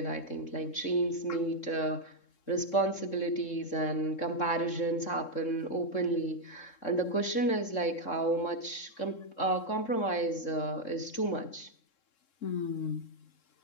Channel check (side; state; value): right; late; 3.7 ms